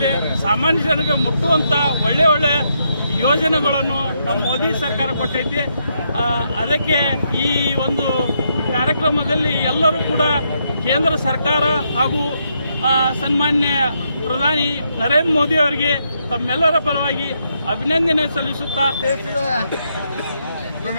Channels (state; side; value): inverted; both; correlation -0.78